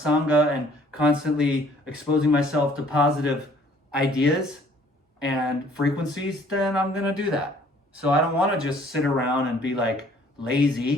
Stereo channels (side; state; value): both; normal; correlation 0.58